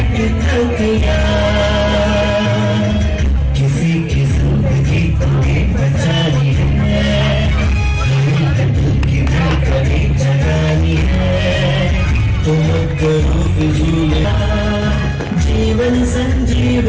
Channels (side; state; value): both; identical; correlation 1.00